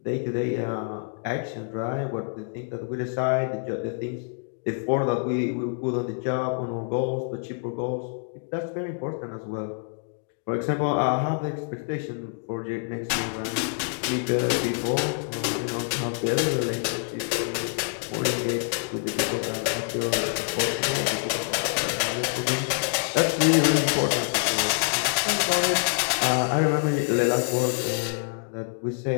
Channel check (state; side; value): silent; right; 61 dB below the other